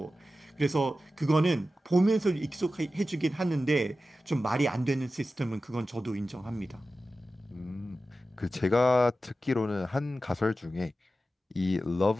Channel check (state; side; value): normal; both; correlation 0.93